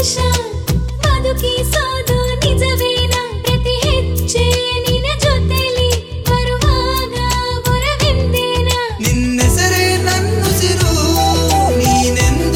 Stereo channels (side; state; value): both; identical; correlation 1.00